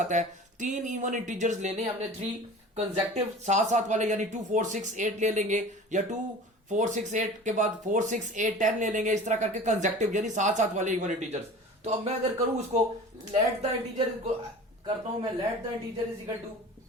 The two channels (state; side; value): normal; both; correlation 0.39